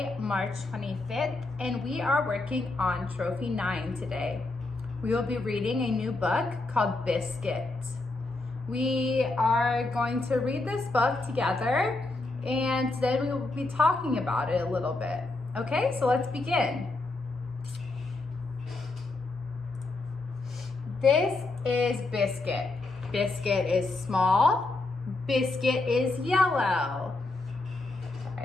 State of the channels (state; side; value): quieter; right; 3.2 dB